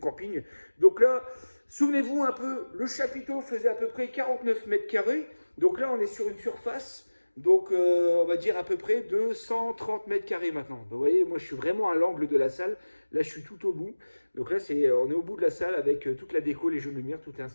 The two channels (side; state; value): both; inverted; correlation -1.00